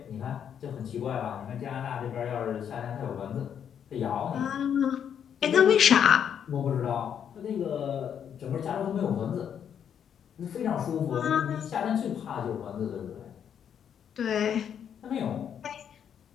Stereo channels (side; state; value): right; quieter; 8.5 dB